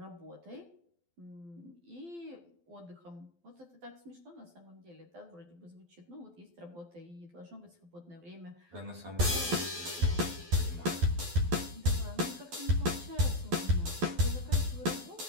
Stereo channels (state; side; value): late; left; 12 ms